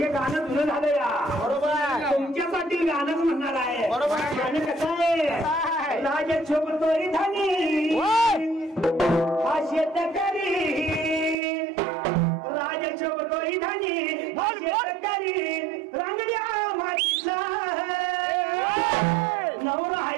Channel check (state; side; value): drops out; left; at 11.4 s